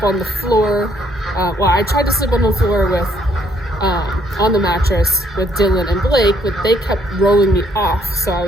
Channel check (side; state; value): both; normal; correlation 0.67